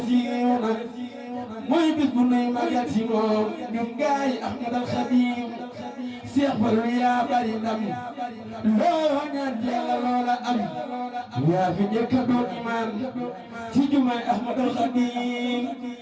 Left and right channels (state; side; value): identical; both; correlation 1.00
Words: siiw na mooy bis bu nuy magal si moom ñun gaay Ahmad al Xadiim Cheikh Fallu yaa bari ndam loo ñaan Yàlla loola am yaa fi njëkk a doon imaam ci jumaay Ahmad al Xadiim